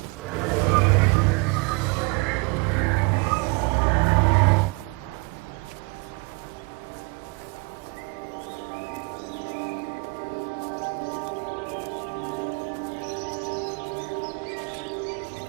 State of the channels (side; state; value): left; quieter; 31.4 dB